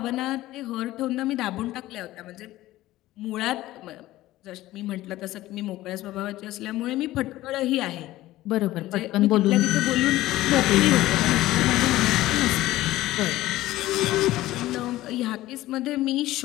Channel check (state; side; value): quieter; right; 16.2 dB